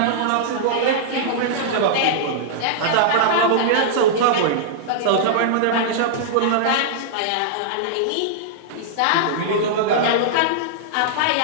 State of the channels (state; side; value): different; both; correlation -0.02